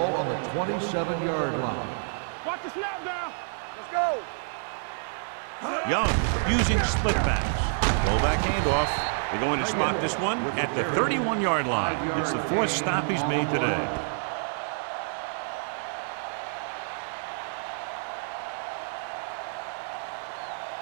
on the 27-yard line. Watch the snap down. Let's go. Young using split backs. Rollback handoff. They're going to spot this one at the 31-yard line. It's the 4th stop he's made today.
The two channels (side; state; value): left; silent; digital silence